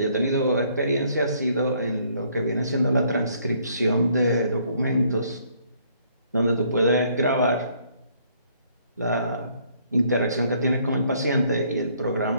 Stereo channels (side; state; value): both; inverted; correlation -0.65